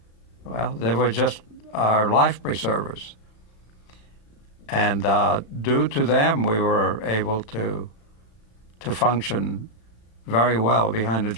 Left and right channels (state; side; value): late; right; 34 ms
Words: they were just our life preservers. And due to them, we were able to function very well behind the